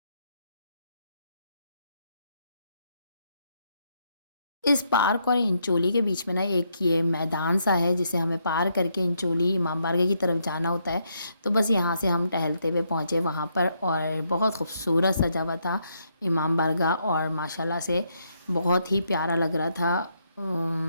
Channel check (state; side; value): inverted; both; correlation -0.76